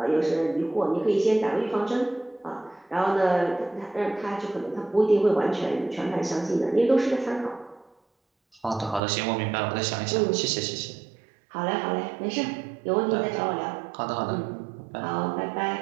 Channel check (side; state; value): left; drops out; at 9.0 s